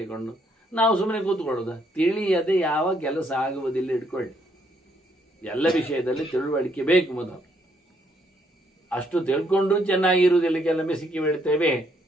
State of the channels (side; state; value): both; normal; correlation 0.71